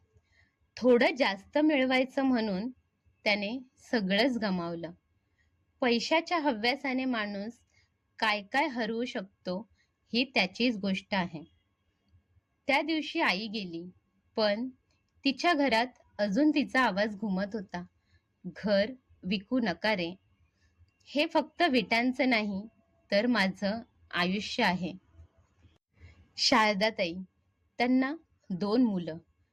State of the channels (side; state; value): both; identical; correlation 1.00